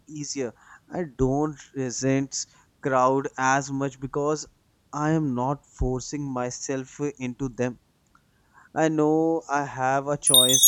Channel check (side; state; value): both; identical; correlation 1.00